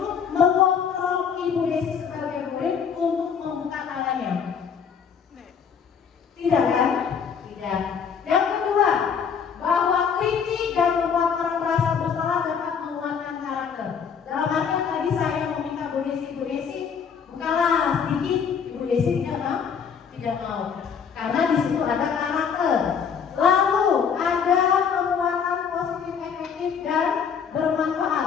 mengontrol Ibu Desi sebagai murid untuk membuka tangannya? Tidak kan? Tidak. Yang kedua, bahwa kritik dan membuat orang merasa bersalah dapat menguatkan karakter. Dalam artian tadi saya meminta Bu Desi, bukalah sedikit. Ibu Desi tidak mau. Karena di situ ada karakter. Lalu ada penguatan positif efektif dan bermanfaat.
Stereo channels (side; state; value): right; quieter; 6.9 dB